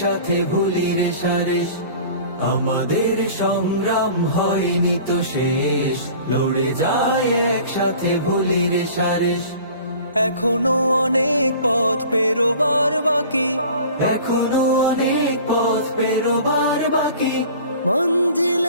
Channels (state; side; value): inverted; both; correlation -0.44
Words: ভুলি রেশারেশ। আমাদের সংগ্রাম হয়নি তো শেষ, লড়ে যায় একসাথে ভুলি রেশারেশ। এখনো অনেক পথ পেরোবার বাকি, এখনো অনেক পথ পেরোবার বাকি,